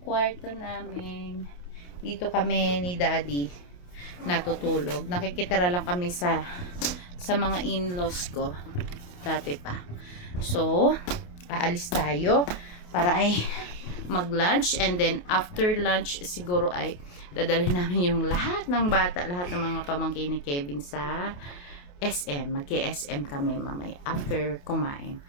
kwarto namin. Dito kami ni Daddy natutulog. Nakikitira lang kami sa mga in-laws ko. Dati pa. So, aalis tayo para ay mag-lunch. And then, after lunch, siguro ay dadalhin namin yung lahat ng bata, lahat ng mga pamangkin ni Kevin sa SM. Mag-SM kami mamaya after kumain.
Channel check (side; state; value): right; late; 28 ms